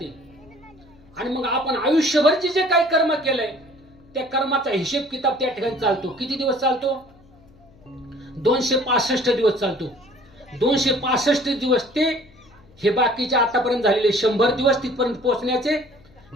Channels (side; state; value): left; noise; hum, 27 dB below the sound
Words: आणि मग आपण आयुष्यभरचे जे काही कर्म केलंय त्या कर्माचा हिशेब किताब त्या ठिकाणी चालतो. किती दिवस चालतो, 265 दिवस चालतो. 265 दिवस ते हे बाकीचे आतापर्यंत झालेले 100 दिवस तिथपर्यंत पोहोचण्याचे,